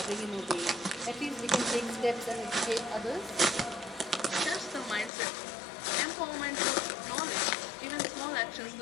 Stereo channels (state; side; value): drops out; right; at 5.1 s